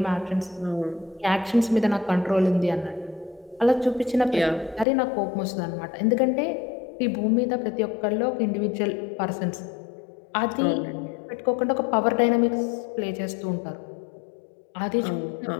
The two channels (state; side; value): drops out; right; at 4.9 s